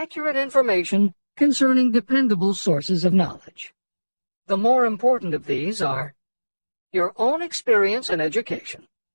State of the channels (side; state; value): both; inverted; correlation -1.00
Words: information concerning dependable sources of knowledge. The more important of these are your own experience and education,